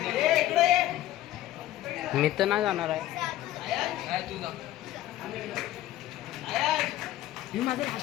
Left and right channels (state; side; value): quieter; right; 14.3 dB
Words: मी तर नाही जाणार आहे.